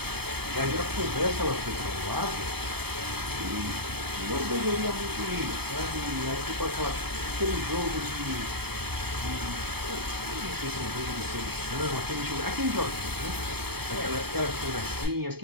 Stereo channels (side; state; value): left; late; 0.97 ms